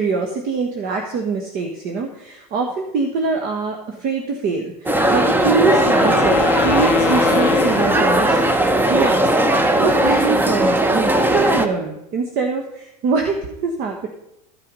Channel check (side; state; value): both; normal; correlation 0.49